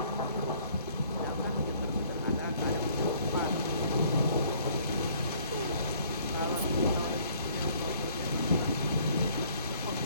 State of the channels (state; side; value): inverted; both; correlation -0.59